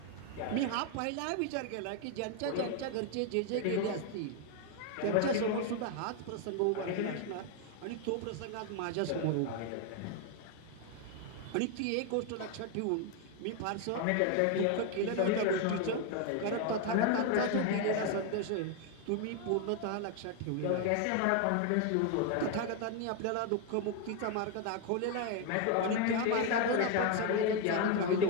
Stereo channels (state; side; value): different; both; correlation 0.01